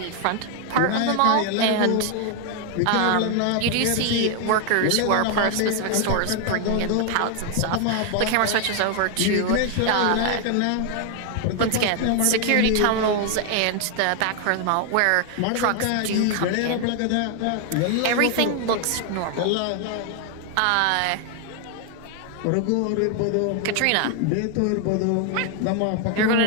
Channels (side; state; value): both; different; correlation 0.00